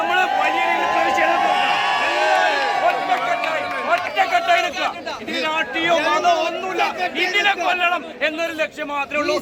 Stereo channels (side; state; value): both; identical; correlation 1.00